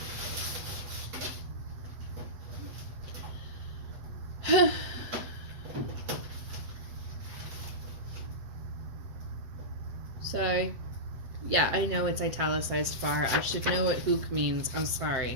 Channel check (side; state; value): left; late; 7.8 ms